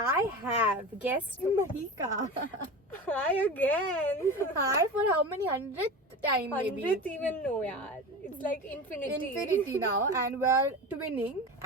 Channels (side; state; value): both; normal; correlation 0.29